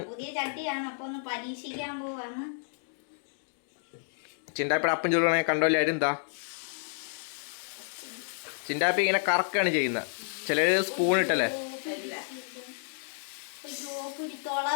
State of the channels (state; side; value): silent; right; digital silence